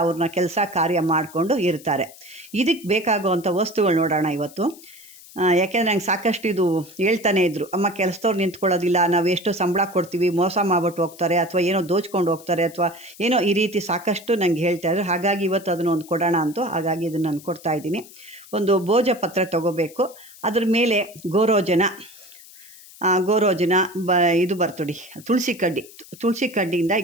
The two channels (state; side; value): noise; left; hiss, 20 dB below the sound